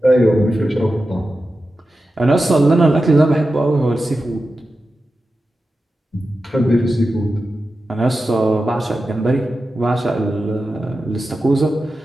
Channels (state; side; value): normal; both; correlation 0.92